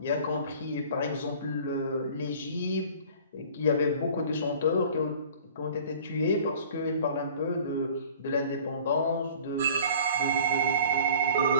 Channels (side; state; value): both; inverted; correlation -0.48